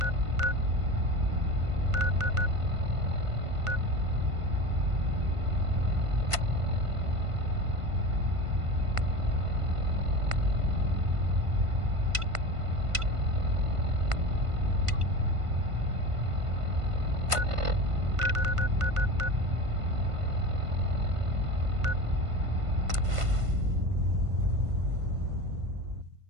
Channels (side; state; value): left; late; 1.5 ms